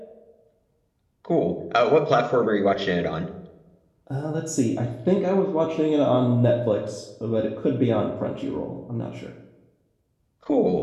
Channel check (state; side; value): identical; both; correlation 1.00